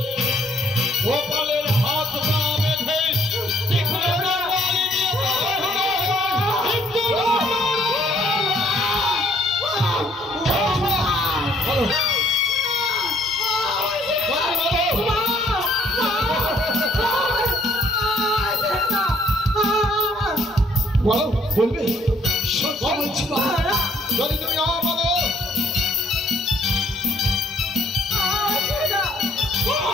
গোপালের হাত পা বেঁধে তীক্ষ্ণ তরবারি দিয়ে বলো, বলবে? সত্য বলছি বাবু। যদি তুমি বলো।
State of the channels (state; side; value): normal; both; correlation 0.64